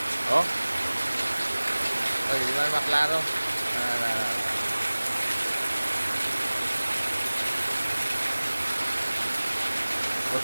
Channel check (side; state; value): both; inverted; correlation -1.00